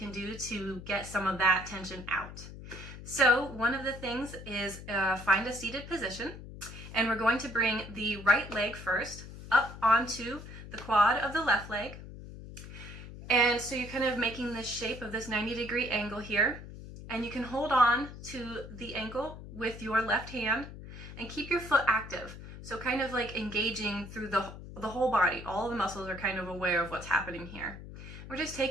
do to get some of that tension out. So one of the things is find a seated position, and we're going to bring the right leg first up onto the quad of the left leg. And so you're kind of making this shape of this 90-degree angle here, and you can hold on to the ankle with your left hand and keep your foot active. So kind of like engaging through the whole body. All of the muscles are kind of aware of what's happening here. We're just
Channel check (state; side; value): noise; left; hum, 13 dB below the sound